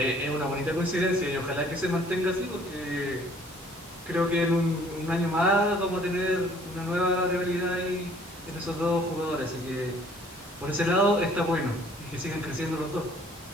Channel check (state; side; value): normal; both; correlation 0.57